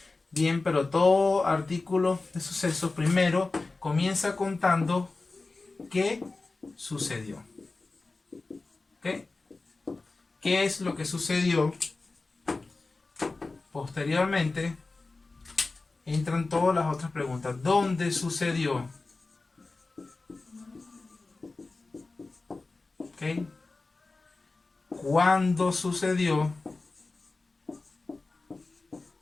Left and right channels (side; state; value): right; quieter; 3.6 dB